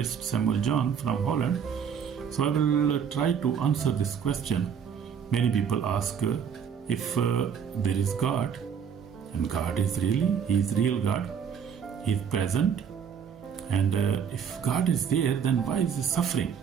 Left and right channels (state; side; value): quieter; left; 7.4 dB